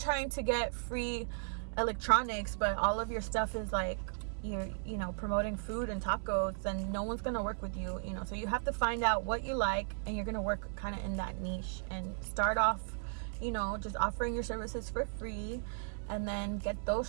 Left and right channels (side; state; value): left; silent; 54 dB below the other